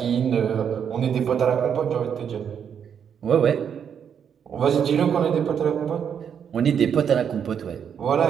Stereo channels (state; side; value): quieter; left; 7.9 dB